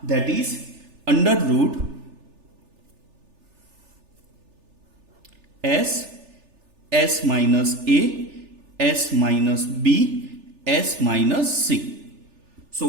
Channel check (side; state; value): left; late; 3.4 ms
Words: दैट इज अंडर रूट एस माइनस ए, एस माइनस बी, एस माइनस सी।